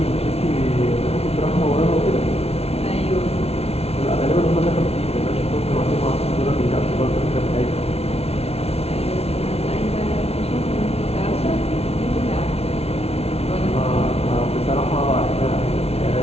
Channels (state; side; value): late; right; 0.30 ms